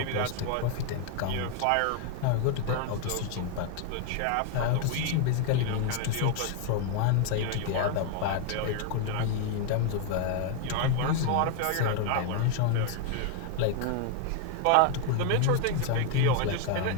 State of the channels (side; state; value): both; different; correlation 0.00